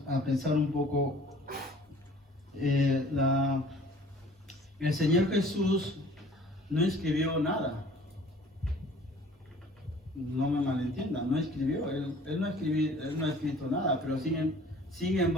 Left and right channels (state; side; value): normal; both; correlation 0.51